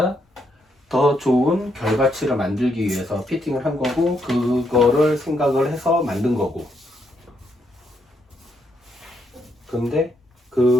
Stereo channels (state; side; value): normal; both; correlation 0.77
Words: 더 좋은 결과치를 만들기 위해서 피팅을 한 거고, 그거를 생각을 해서 만든 거고. 근데